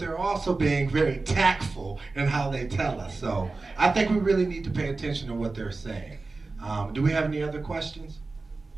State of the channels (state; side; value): quieter; left; 3.6 dB